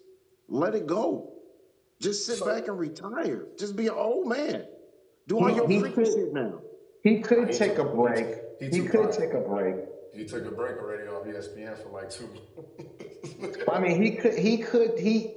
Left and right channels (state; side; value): identical; both; correlation 1.00